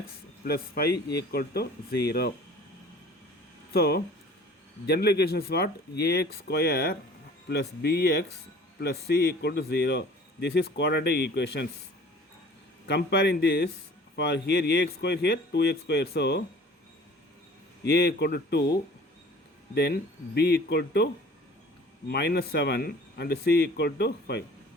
plus 5 equal to 0. So general equation is what? Ax square plus bx plus c equal to 0. This is quadratic equations. Comparing this, for here ax square, here 2x square. So a equal to 2, then b equal to minus 7 and c equal to 5.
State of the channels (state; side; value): normal; both; correlation 0.48